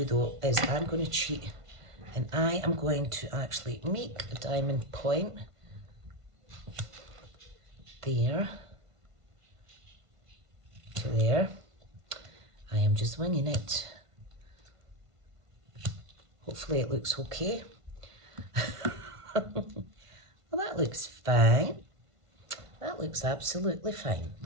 though is I'm going to cheat, and I am going to actually make a diamond point there to there. I am just winging it. Hopefully it looks okay. Well, that looks fine. That looks absolutely fine.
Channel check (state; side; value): late; left; 1.5 ms